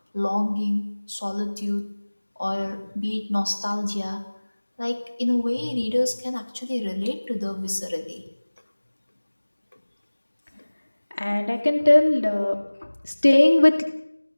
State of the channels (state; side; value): inverted; both; correlation -1.00